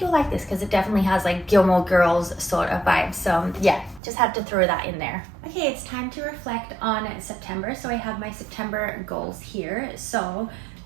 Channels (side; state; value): left; drops out; at 4.0 s